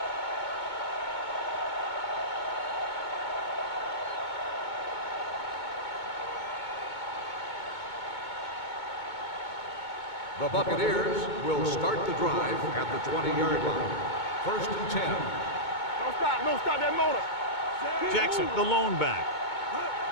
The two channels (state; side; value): late; right; 2.2 ms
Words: The Buccaneers will start the drive at the 20-yard line. First and 10. Don't stop that motor. Jackson, the lone back.